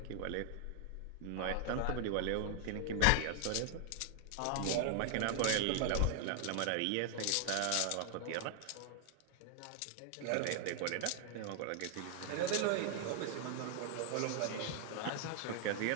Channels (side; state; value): both; different; correlation 0.00